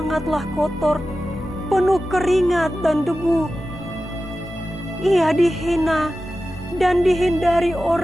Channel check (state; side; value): normal; both; correlation 0.94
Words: kotor, penuh keringat dan debu, ia dihina dan dihindari